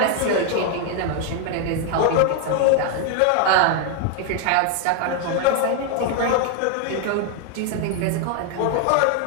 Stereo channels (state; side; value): different; both; correlation 0.00